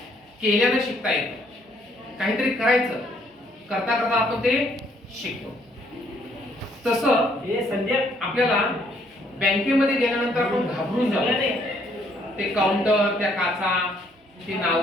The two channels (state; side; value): normal; both; correlation 0.67